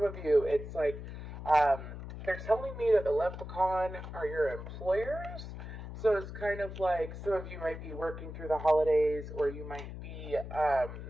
of you, it's like they're telling me that the leprechaun are your employers. So it's kind of like some of you might be working through the holidays, or you might be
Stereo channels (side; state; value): left; noise; hum, 9 dB below the sound